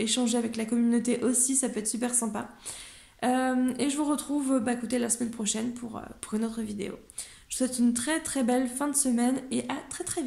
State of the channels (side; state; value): both; identical; correlation 1.00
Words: avec la communauté aussi, ça peut être super sympa. Et je vous retrouve écoutez, la semaine prochaine pour une autre vidéo. Je vous souhaite une très très belle fin de semaine et à très très